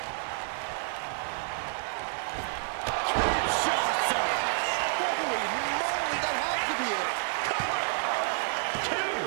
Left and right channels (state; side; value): silent; left; digital silence